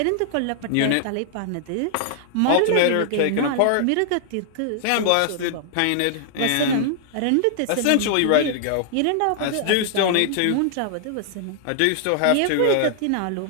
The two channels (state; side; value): different; both; correlation 0.00